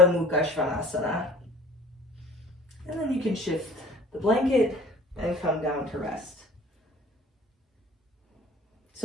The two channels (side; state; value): both; normal; correlation 0.48